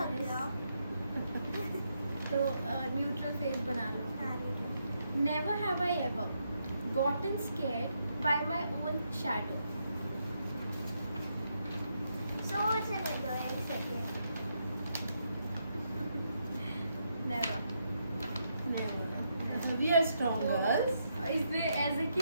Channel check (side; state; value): both; inverted; correlation -0.79